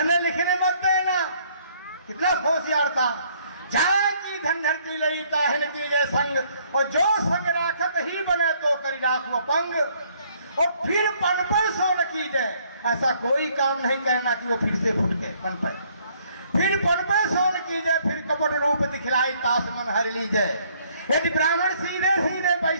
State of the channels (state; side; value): inverted; both; correlation -0.65